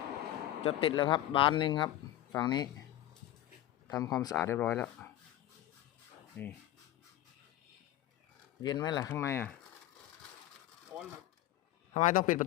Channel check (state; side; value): quieter; right; 13.9 dB